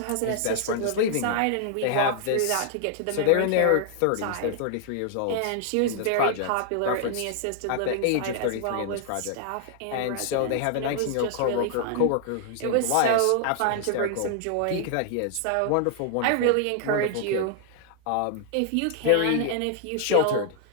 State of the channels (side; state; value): both; different; correlation 0.00